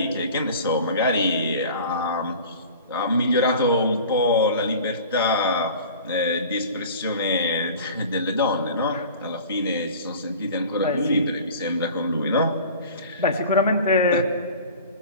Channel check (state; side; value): inverted; both; correlation -0.41